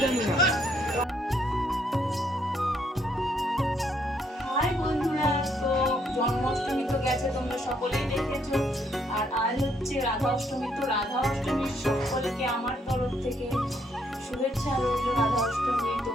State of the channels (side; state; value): both; normal; correlation 0.71